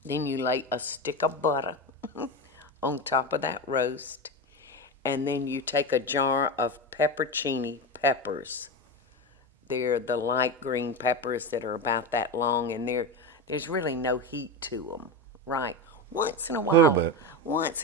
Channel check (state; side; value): normal; both; correlation 0.20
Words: Then you lay a stick of butter on top of that roast, and then you take a jar of pepporcini peppers. They're the light green peppers that are about that long, and there's really no heat to them, right? Once in a A little while, bit. once